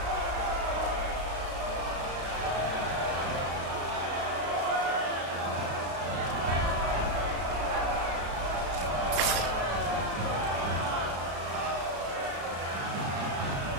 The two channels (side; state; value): left; late; 34 ms